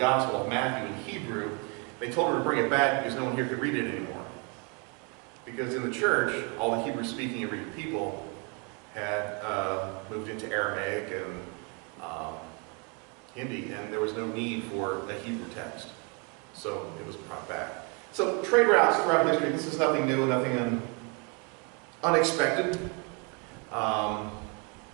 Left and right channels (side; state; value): left; quieter; 33.8 dB